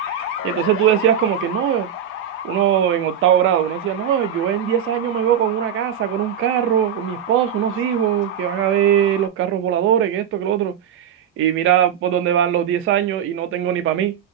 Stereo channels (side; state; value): left; quieter; 8.7 dB